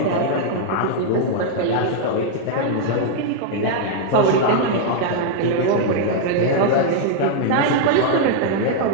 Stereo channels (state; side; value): different; both; correlation -0.01